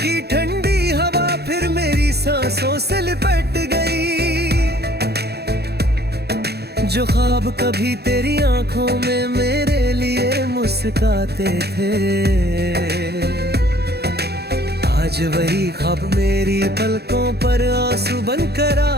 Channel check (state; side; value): late; left; 0.47 ms